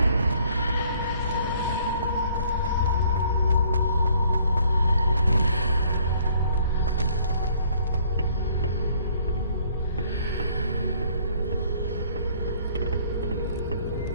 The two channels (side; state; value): both; inverted; correlation -0.61